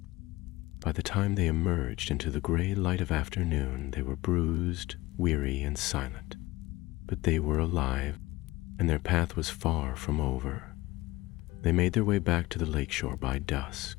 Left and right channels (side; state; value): right; quieter; 19.4 dB